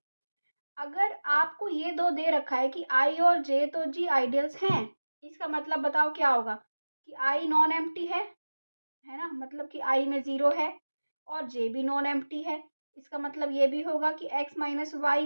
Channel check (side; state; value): both; inverted; correlation -1.00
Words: अगर आपको ये 2 दे रखा है कि आई और जे तो जी आइडियल्स हैं, इसका मतलब बताओ क्या होगा? कि आई नॉन एम्प्टी है ना? मतलब कि आई में 0 है और जे भी नॉन एम्प्टी है। इसका मतलब ये भी होगा कि x माइनस